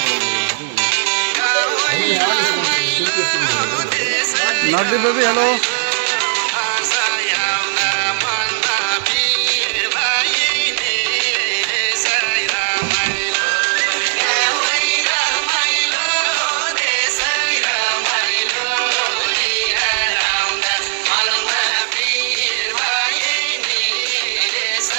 नगदी बेबी हेलो।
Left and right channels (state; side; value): silent; left; digital silence